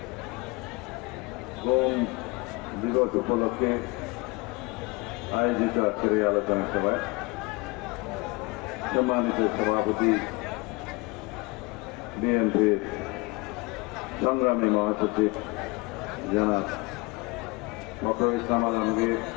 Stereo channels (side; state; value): right; quieter; 25.9 dB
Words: গম দিবস উপলক্ষে আয়োজিত আজকের এই আলোচনা সভায় সম্মানিত সভাপতি বিএনপির সংগ্রামী মহাসচিব জনাব ডক্টর ইসলাম আলমগীর,